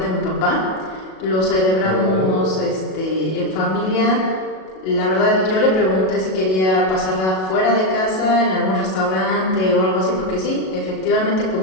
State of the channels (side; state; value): right; late; 37 ms